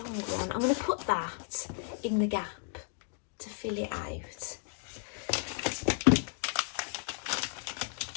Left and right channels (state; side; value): silent; right; 55 dB below the other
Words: one. I'm going to put that in the gap to fill it out.